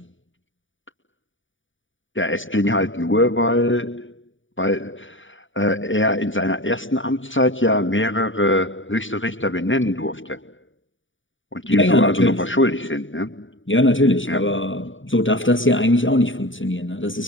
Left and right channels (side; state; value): right; late; 0.56 ms